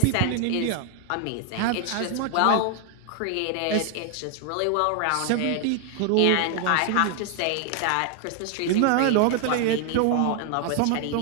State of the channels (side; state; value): both; different; correlation 0.00